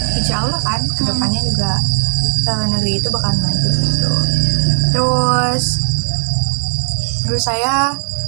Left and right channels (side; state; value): left; silent; digital silence